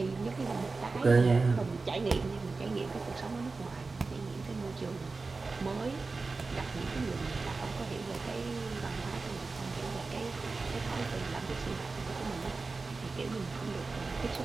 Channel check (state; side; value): quieter; left; 3.9 dB